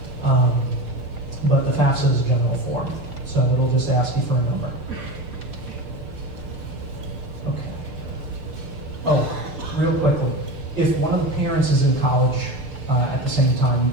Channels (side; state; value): left; late; 6.7 ms